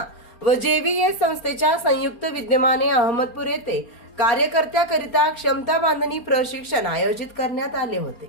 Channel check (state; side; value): late; right; 4.3 ms